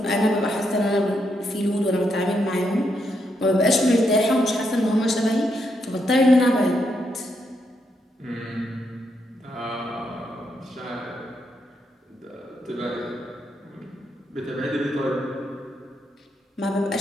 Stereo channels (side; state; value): both; normal; correlation 0.79